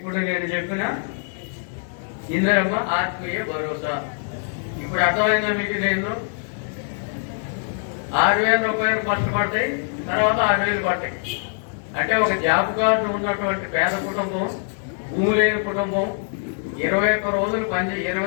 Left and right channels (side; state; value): right; silent; 63 dB below the other